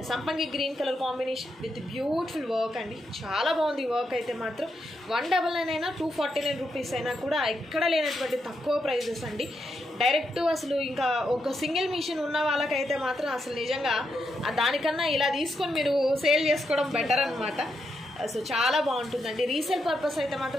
సంపంగి green colour combination with beautiful work అండి. చాలా బాగుంది వర్క్ అయితే మాత్రం. 199 అయినా 249 రూపీస్ అయినా కూడా ఎక్కడ లేనటువంటి తక్కువ ప్రైజెస్ అండి. డైరెక్ట్ అసలు ఇంకా ఒక సింగిల్ మిషన్ ఉన్న వాళ్ళకైతే మాత్రం అసలు నిజంగా దానికన్నా ఇలా తీసుకొని మీరు సేల్ చేసుకోవడం బెటర్ అనమాట. సో చాలా బాగుంటుందండి. రీసేల్ పర్పస్ అయితే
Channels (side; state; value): both; normal; correlation 0.82